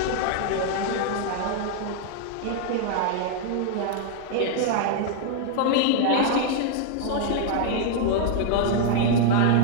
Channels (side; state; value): both; different; correlation 0.00